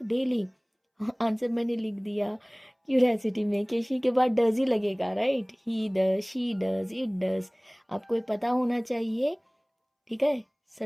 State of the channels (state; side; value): identical; both; correlation 1.00